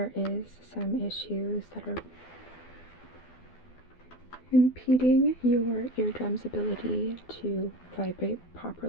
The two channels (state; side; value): late; right; 12 ms